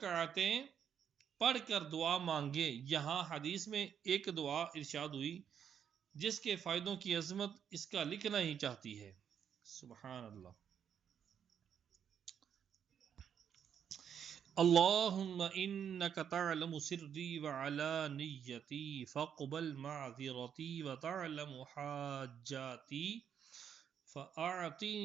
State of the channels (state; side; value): quieter; left; 8.3 dB